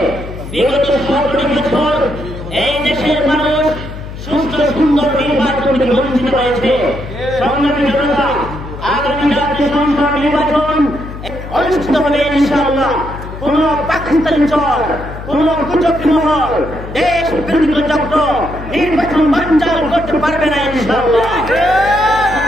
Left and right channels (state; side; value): noise; left; hum, 11 dB below the sound